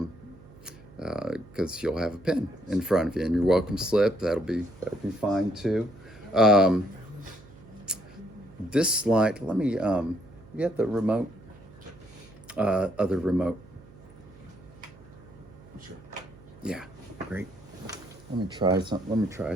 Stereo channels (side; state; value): right; noise; hum, 22 dB below the sound